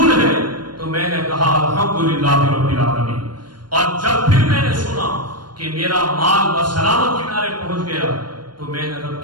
ہے، تو میں نے کہا الحمدللہ رب العالمین۔ اور جب پھر میں نے سنا کہ میرا مال بسلامت کنارے پہنچ گیا، تو میں نے رب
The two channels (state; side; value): late; left; 0.71 ms